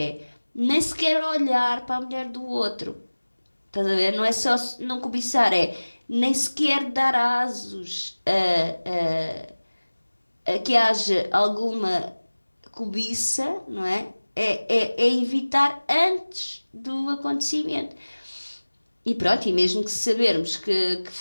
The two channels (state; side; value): inverted; both; correlation -1.00